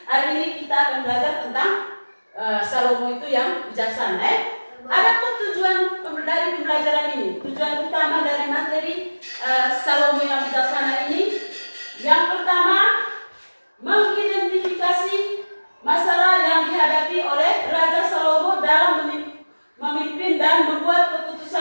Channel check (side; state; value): both; inverted; correlation -1.00